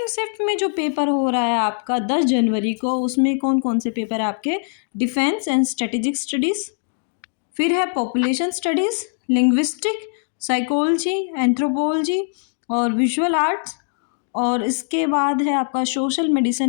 शिफ्ट में जो पेपर हो रहा है आपका 10 जनवरी को, उसमें कौन कौन से पेपर है आपके? डिफेंस एंड स्ट्रेटेजिक स्टडीज़, फिर है population studies, linguistic, psychology, anthropology और विजुअल आर्ट्स। और इसके बाद है आपका social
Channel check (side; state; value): right; silent; digital silence